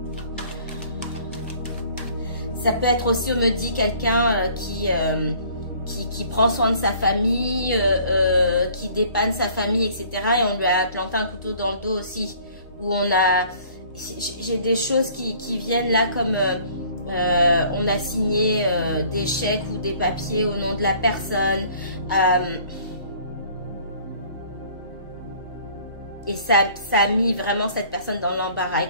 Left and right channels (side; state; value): both; inverted; correlation -0.55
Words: Ça peut être aussi, on me dit, quelqu'un qui prend soin de sa famille, qui dépanne sa famille, etc. Et on lui a planté un couteau dans le dos aussi. Où on a... J'ai des choses qui viennent là comme on a signé des chèques ou des papiers au nom de la personne. Et ça a mis vraiment cette personne dans l'embarras. Et